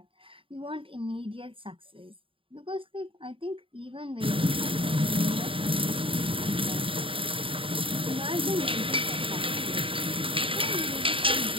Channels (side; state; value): left; late; 0.26 ms